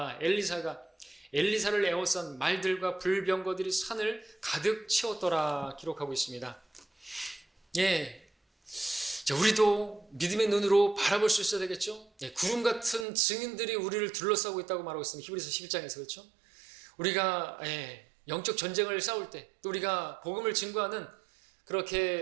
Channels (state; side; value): drops out; left; at 13.1 s